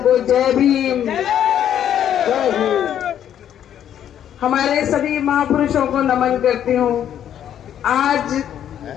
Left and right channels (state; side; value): quieter; right; 10.1 dB